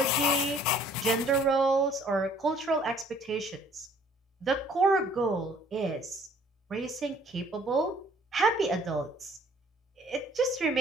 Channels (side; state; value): both; normal; correlation 0.57